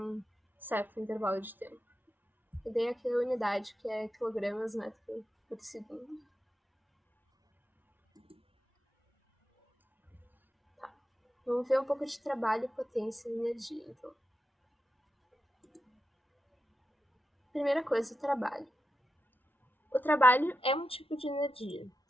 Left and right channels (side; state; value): both; normal; correlation 0.88